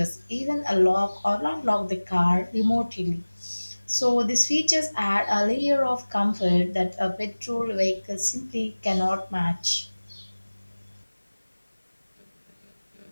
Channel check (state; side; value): inverted; both; correlation -1.00